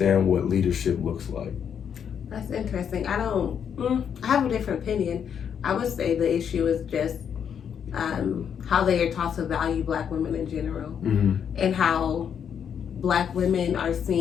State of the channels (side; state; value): right; quieter; 8.0 dB